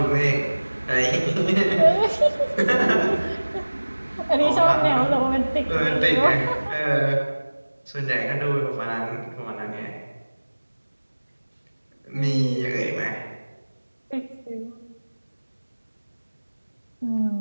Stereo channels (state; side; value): inverted; both; correlation -1.00